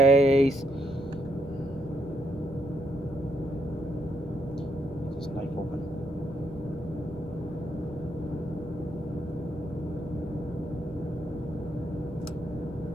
This knife open.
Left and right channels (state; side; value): normal; both; correlation 0.76